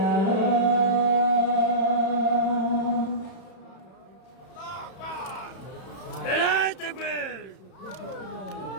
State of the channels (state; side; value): late; right; 31 ms